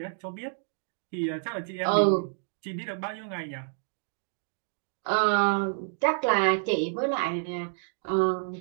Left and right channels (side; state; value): left; silent; digital silence